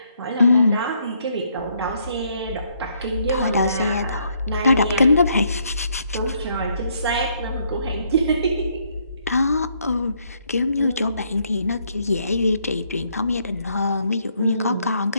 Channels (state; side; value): inverted; both; correlation -0.71